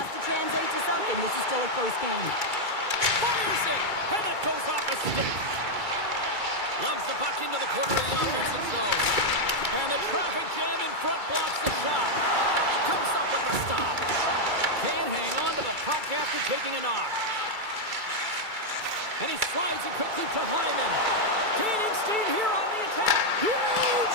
to translate to something. This is still a close game. Fires it, and that goes off a stick. Loves the puck into the corner of the offensive zone. And the traffic jam in front blocks the shot. Comes up with the stop. Can't hang on to the puck after taking a knock. And he slides it quickly to Hyman. Gaining steam here on the attack. Huge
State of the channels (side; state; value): left; late; 2.3 ms